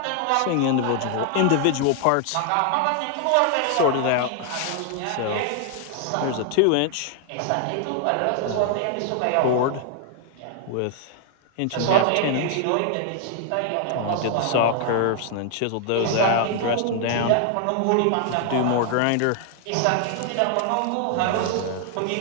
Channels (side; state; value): both; different; correlation 0.00